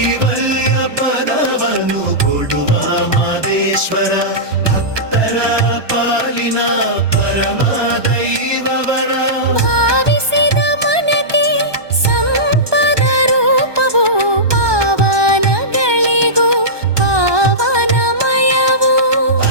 ಪದವನ್ನು ಕೊಡುವ ಮಾದೇಶ್ವರ ಭಕ್ತರ ಪಾಲಿನ ಪರಮ ದೈವವರ. ಭಾವಿಸಿದ ಮನಕ್ಕೆ ಸಂಪದ ರೂಪವು ಪಾವನಗಳಿಗೂ ಪಾವನಮಯವು.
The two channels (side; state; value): left; late; 1.2 ms